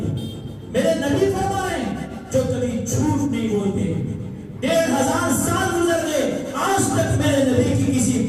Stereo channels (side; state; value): both; identical; correlation 1.00